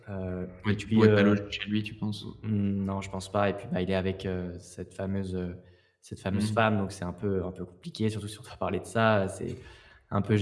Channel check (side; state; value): both; identical; correlation 1.00